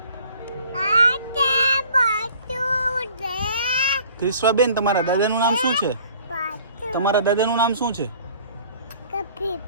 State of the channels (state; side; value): inverted; both; correlation -0.52